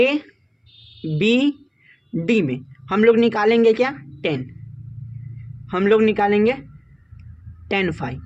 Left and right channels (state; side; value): identical; both; correlation 1.00